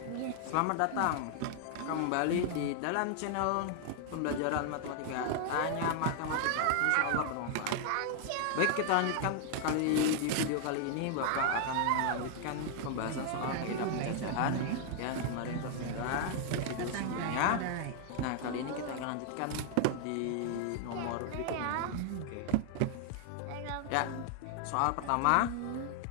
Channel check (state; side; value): different; both; correlation 0.00